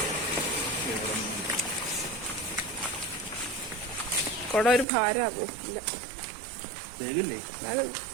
കൊട ഒരു ഭാരമാകൂ. ഇല്ല,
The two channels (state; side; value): drops out; left; at 4.9 s